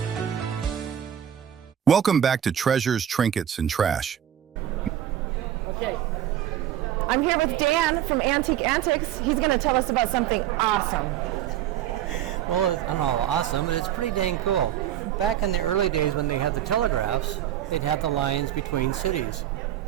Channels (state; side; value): quieter; left; 10.8 dB